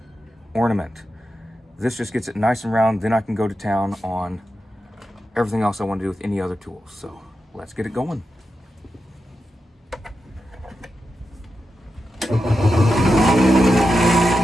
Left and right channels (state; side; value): normal; both; correlation 0.89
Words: ornament. This just gets it nice and round, then I can go to town on everything else I want to do with any other tools. So let's get it going.